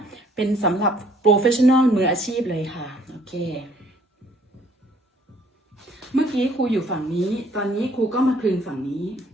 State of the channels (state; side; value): normal; both; correlation 0.61